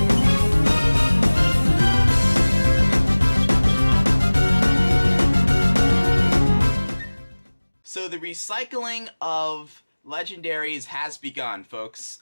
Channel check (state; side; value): inverted; both; correlation -1.00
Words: So the recycling of legendaries has begun, folks.